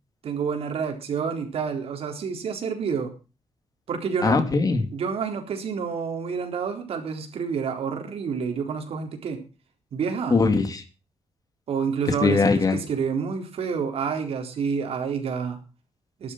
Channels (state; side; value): normal; both; correlation 0.62